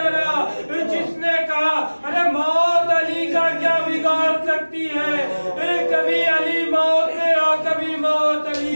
جس نے کہا ارے موت علی کا کیا بگاڑ سکتی ہے، کبھی علی موت پہ اور کبھی موت علی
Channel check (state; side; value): inverted; both; correlation -1.00